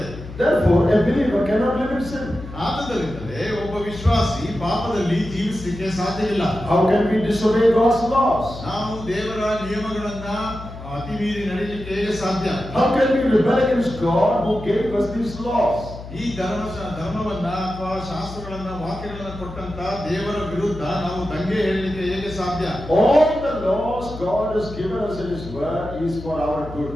Therefore, a believer cannot live in sin. ಆದ್ದರಿಂದಲೇ ಒಬ್ಬ ವಿಶ್ವಾಸಿ ಪಾಪದಲ್ಲಿ ಜೀವಿಸಲಿಕ್ಕೆ ಸಾಧ್ಯವಿಲ್ಲ. How can we disobey God's laws? ನಾವು ದೇವರ ನಿಯಮಗಳನ್ನ ಅತಿ ಮೀರಿ ನಡೆಯಲಿಕ್ಕೆ ಹೇಗೆ ಸಾಧ್ಯ? How can we rebel against God who gave us these laws? ಈ ಧರ್ಮವನ್ನ ಅಥವಾ ಶಾಸ್ತ್ರಗಳನ್ನ ವಾಕ್ಯಗಳನ್ನ ಕೊಟ್ಟಂತ ದೇವರ ವಿರುದ್ಧ ನಾವು ದಂಗೆ ಹೇಳಲಿಕ್ಕೆ ಹೇಗೆ ಸಾಧ್ಯ? All the laws God has given us in His Word is for our good.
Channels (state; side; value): noise; left; hum, 13 dB below the sound